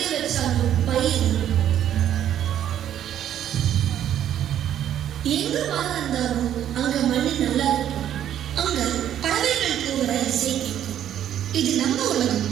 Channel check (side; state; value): left; quieter; 10.7 dB